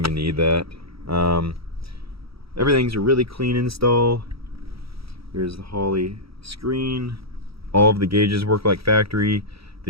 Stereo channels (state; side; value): late; left; 0.76 ms